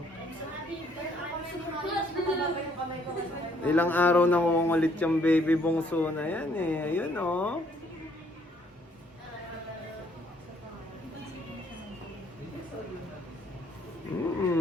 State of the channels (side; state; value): both; normal; correlation 0.65